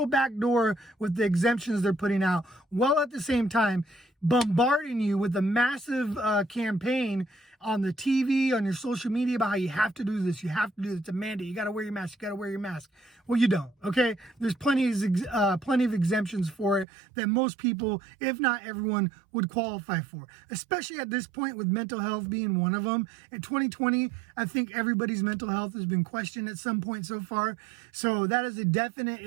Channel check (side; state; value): left; drops out; at 16.9 s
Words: back door with the exemptions they're putting out, while at the same time bombarding you with a massive campaign on the TV, on your social media about how you have to do this, you have to do this, it's a mandate, you got to wear your mask, you got to wear your mask. Well, you don't, okay? There's plenty of exemptions for it that most people, if not everyone, would qualify for, especially at this point with mental health being one of them. In 2020, I think everybody's mental health has been questioned at some point so far. So that is a definite